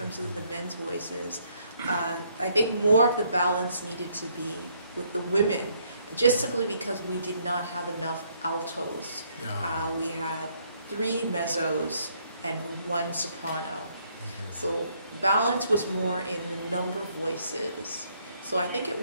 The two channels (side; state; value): both; inverted; correlation -0.70